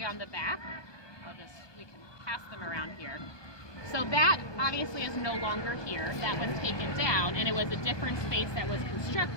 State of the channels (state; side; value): late; right; 1.2 ms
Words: on the back. We can pass them around here. So that obviously is no longer here. That was taken down, and it was a different space that was